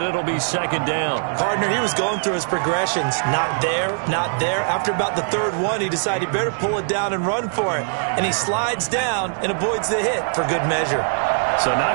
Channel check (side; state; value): left; silent; digital silence